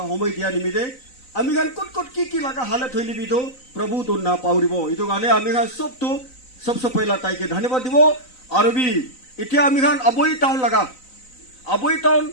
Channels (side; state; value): right; late; 3.9 ms